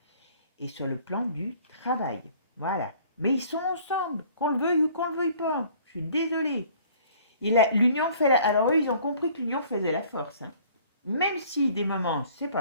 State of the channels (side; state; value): both; inverted; correlation -0.54